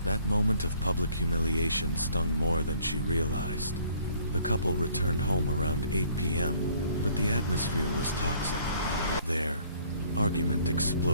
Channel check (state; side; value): inverted; both; correlation -0.59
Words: That moment of public humiliation stung more than she realized. The couple returned home around 8 p.m., but the atmosphere was toxic. Their argument